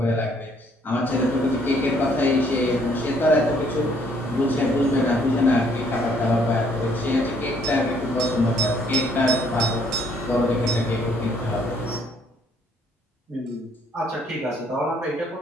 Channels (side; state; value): both; normal; correlation 0.65